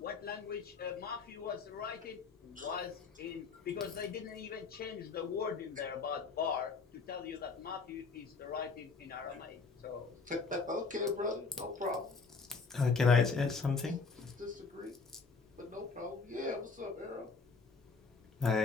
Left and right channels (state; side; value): quieter; right; 4.6 dB